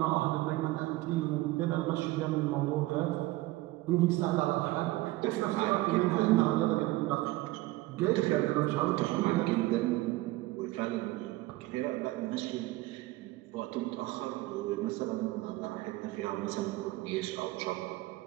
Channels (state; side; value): quieter; left; 18.6 dB